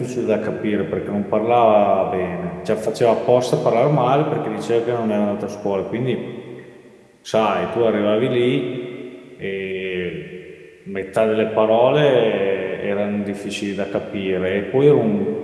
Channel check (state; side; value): identical; both; correlation 1.00